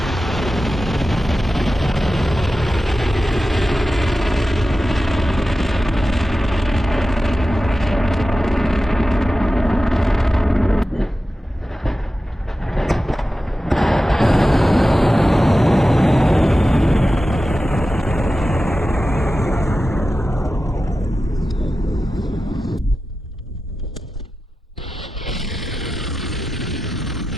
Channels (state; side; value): normal; both; correlation 0.93